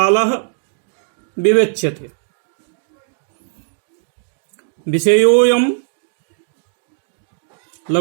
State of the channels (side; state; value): left; silent; 62 dB below the other